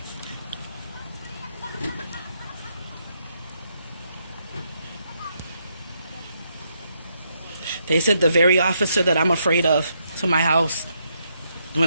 They sent the very officer that I'm afraid of to my house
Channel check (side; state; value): both; inverted; correlation -0.77